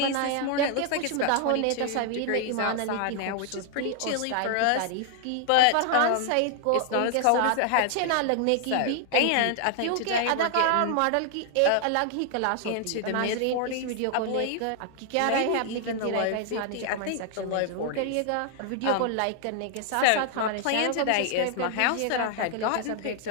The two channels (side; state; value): both; different; correlation 0.00